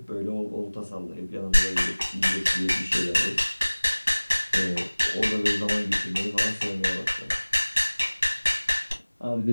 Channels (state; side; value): inverted; both; correlation -1.00